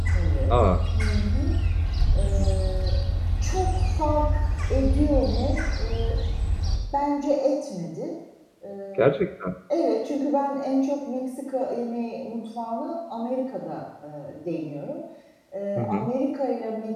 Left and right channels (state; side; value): identical; both; correlation 1.00